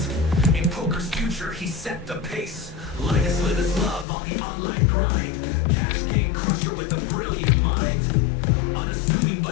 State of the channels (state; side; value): drops out; right; at 4.0 s